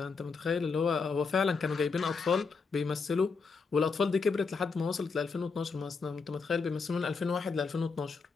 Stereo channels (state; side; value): quieter; right; 4.8 dB